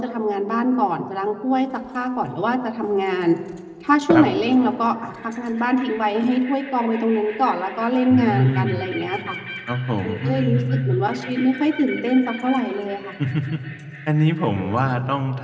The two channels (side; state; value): both; identical; correlation 1.00